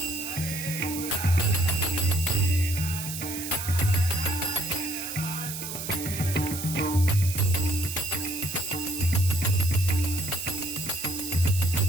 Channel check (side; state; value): right; noise; hiss, 7 dB below the sound